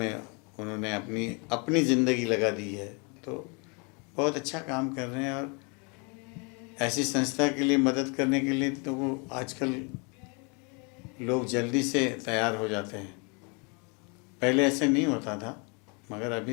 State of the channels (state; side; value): quieter; right; 33.1 dB